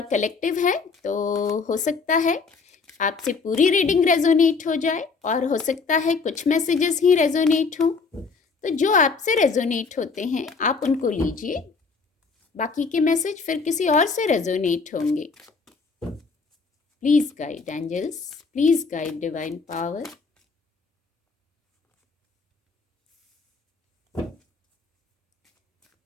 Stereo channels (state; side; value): quieter; right; 4.7 dB